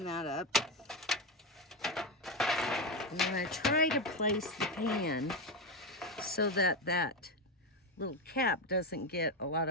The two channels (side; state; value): both; normal; correlation 0.11